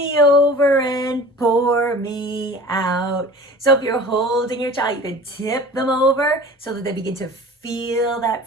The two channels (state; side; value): normal; both; correlation 0.41